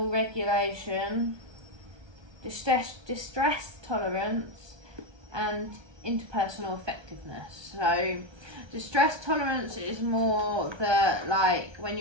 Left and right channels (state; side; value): late; left; 1.3 ms